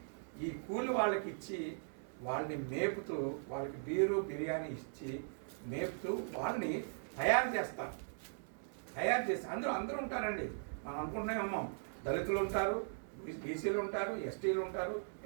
ఈ కూలి వాళ్ళకి ఇచ్చి వాళ్ళని మేపుతూ, వాళ్ళకి బిర్యానీ ఇచ్చి మేపుతూ వాళ్ళని తయారు చేసి అందరూ ఉంటారండి. మనం అనుకుంటున్నామేమో, దళితులు ఉంటారు, బీసీలు ఉంటారు, ఎస్టీలు ఉంటారు,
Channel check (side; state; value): left; silent; digital silence